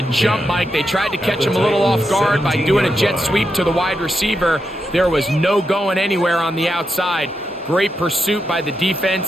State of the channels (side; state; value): both; normal; correlation 0.85